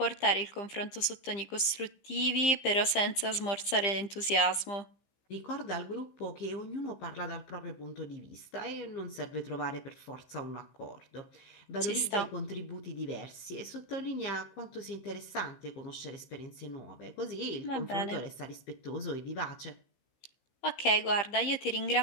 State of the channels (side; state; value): right; late; 15 ms